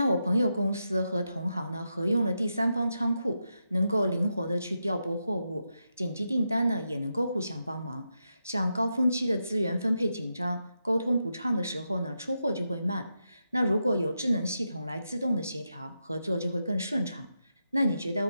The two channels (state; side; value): inverted; both; correlation -0.86